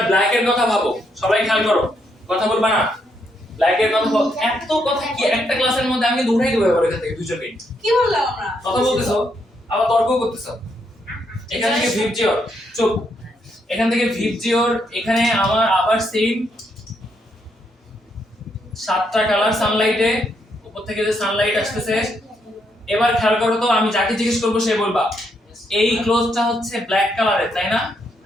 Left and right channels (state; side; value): normal; both; correlation 0.76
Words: ব্ল্যাক এর কথা ভাবো সবাই খেয়াল করো কথা বলবা না ব্ল্যাক এর কথা এত কথা কি একটা ক্লাসের মধ্যে আমি দৌড়াই দেব এবার এখান থেকে দুজনকে কি বললাম আমরা কথা বলতেছো আবার তর্ক করতেছো এখান থেকে ভিবজিওর চুপ এখান থেকে ভিবজিওর এখানে আমার আবার সেম 7টা কালার সানলাইটে উপর থেকে যে সানলাইট আসতেছে এবার খেয়াল করো তো আমি যাকে জিজ্ঞেস করব সে বলবা এই ক্লোজটা হচ্ছে ব্ল্যাক কালারের তাই না